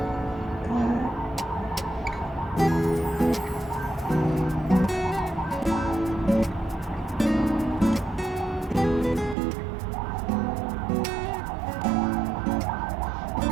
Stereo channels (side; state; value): left; drops out; at 9.3 s